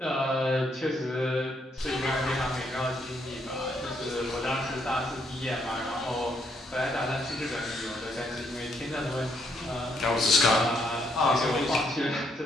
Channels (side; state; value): both; normal; correlation 0.73